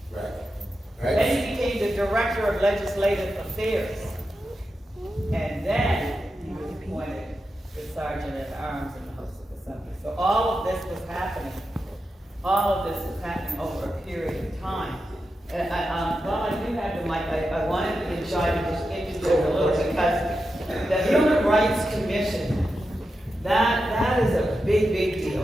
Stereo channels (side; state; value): both; normal; correlation 0.89